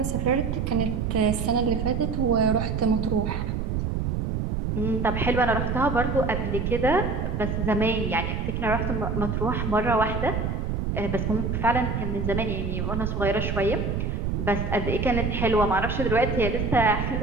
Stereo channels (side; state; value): right; noise; rumble, 1 dB below the sound